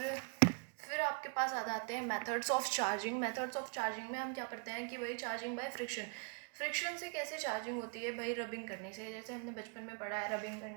फिर आपके पास आ जाते हैं methods of charging. Methods of charging में हम क्या पढ़ते हैं कि भाई चार्जिंग बाय फ्रिक्शन। फ्रिक्शन से कैसे चार्जिंग होती है भाई, रबिंग करने से। जैसे हमने बचपन में पढ़ा है, रबिंग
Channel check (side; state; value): left; quieter; 35.2 dB